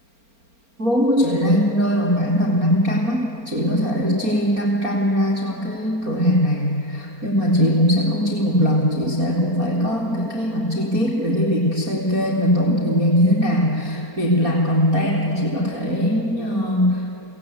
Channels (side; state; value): left; late; 4.4 ms